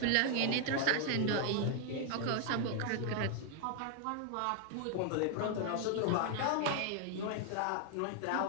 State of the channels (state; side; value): different; both; correlation 0.00